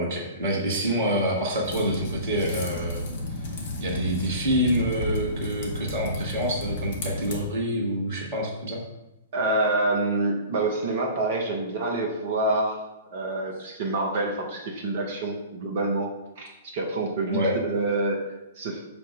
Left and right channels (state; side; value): inverted; both; correlation -0.41